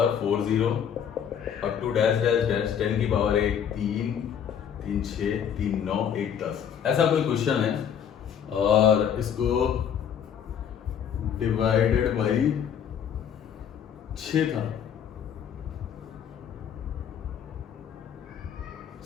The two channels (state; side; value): quieter; right; 8.4 dB